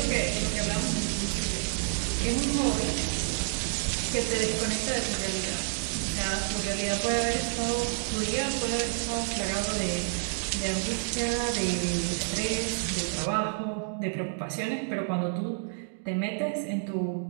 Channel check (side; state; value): left; silent; digital silence